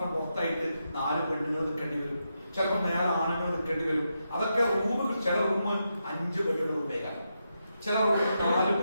പുറത്തായിട്ട് 4 പെണ്ണുങ്ങൾ നിൽക്കേണ്ടി വരും, ചിലപ്പോൾ നേരെ ആണുങ്ങൾ നിൽക്കേണ്ടി വരും. അതൊക്കെ റൂം ചില റൂം 5 ബെഡുള്ള റൂമേക്കാണ്. ചില റൂം 4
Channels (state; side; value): inverted; both; correlation -0.85